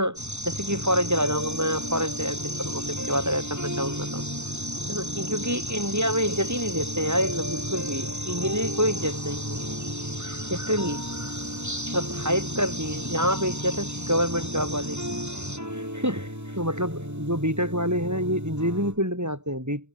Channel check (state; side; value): late; left; 0.82 ms